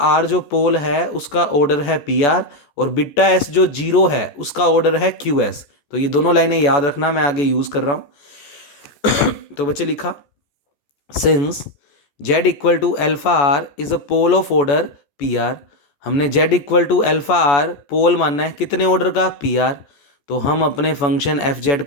जो पोल है उसका ऑर्डर है पी आर, और बीटा एस जो जीरो है उसका ऑर्डर है क्यू एस। तो ये दोनों लाइनें याद रखना, मैं आगे यूज कर रहा हूं। तो बच्चे लिखा, since z equal to alpha R is a pole of order P R. हमने z equal to alpha R pole मानना है कितने ऑर्डर का, पी आर। तो हम अपने फंक्शन एफ जेड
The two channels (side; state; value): right; late; 14 ms